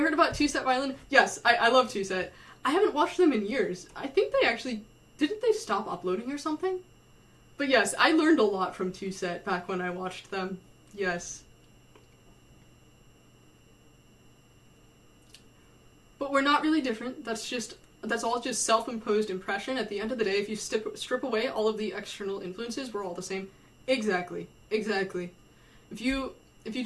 about two-set violin? Yes, I love two-set. I haven't watched them in years. I think they actually, didn't they stop uploading or something? But yes, I learned a lot from Two Set back when I watched them. Yes. But we're not really different. That's all just self-imposed impression. At the end of the day, if you strip away all of the external influences, we're all the same. Exactly. Exactly. If you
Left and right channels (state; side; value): identical; both; correlation 1.00